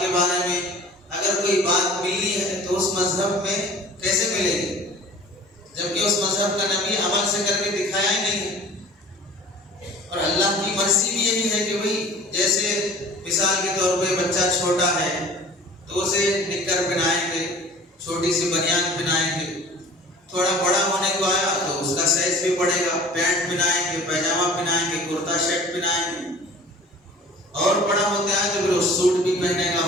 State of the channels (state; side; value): normal; both; correlation 0.45